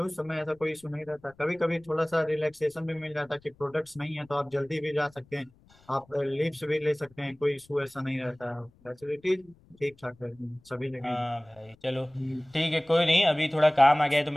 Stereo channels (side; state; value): left; noise; rumble, 30 dB below the sound